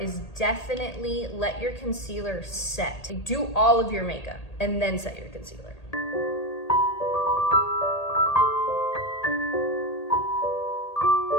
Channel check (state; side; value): late; right; 1.8 ms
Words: definitely let your concealer set. Like, do all of your makeup and then set your concealer.